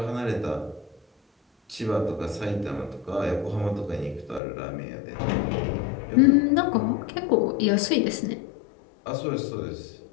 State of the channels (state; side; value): drops out; right; at 4.4 s